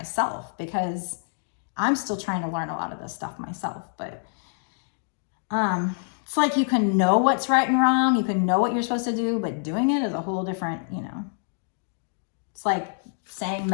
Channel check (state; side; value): silent; right; 61 dB below the other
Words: because I'm still trying to learn a lot of this stuff myself. But it's like you can know what's right and wrong. You can know what you're supposed to do, but doing it is a whole different, you know. It's like saying